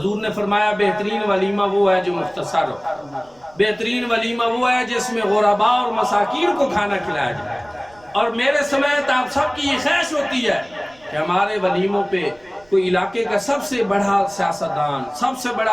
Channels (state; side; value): noise; right; rumble, 29 dB below the sound